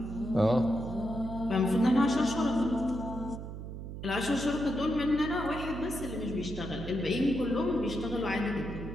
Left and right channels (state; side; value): noise; right; hum, 9 dB below the sound